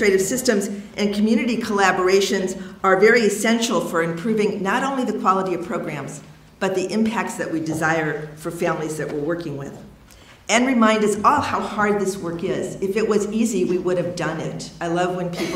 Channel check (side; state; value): both; identical; correlation 1.00